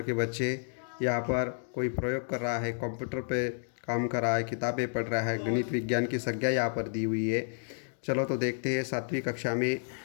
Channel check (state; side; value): silent; right; digital silence